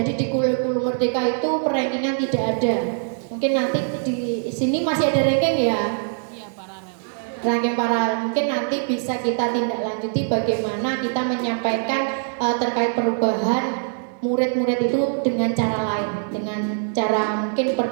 di Kulu Merdeka itu rankingan tidak ada. Mungkin nanti di sini masih ada ranking ya. Iya, paralel. Ranking paralel. Mungkin nanti bisa kita tindak lanjuti bagaimana kita menyampaikan terkait perubahan murid-murid itu dengan cara lain, dengan cara mungkin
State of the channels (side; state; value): left; silent; digital silence